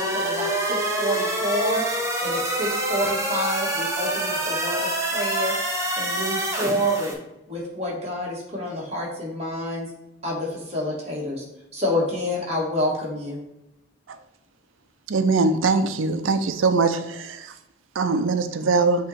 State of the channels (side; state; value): both; normal; correlation 0.05